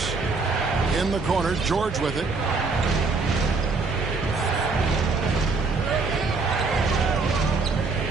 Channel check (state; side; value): quieter; left; 4.1 dB